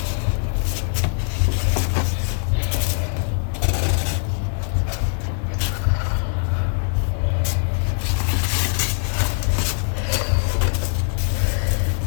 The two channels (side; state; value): right; silent; digital silence